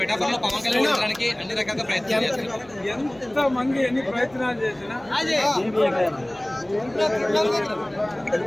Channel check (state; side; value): noise; right; hum, 27 dB below the sound